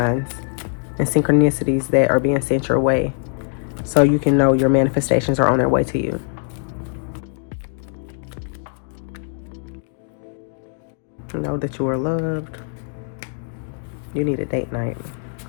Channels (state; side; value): silent; right; digital silence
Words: and synchronicities that are being sent your way, so you can know your manifestations are on their way to you. Know that you are loved. You need a date night,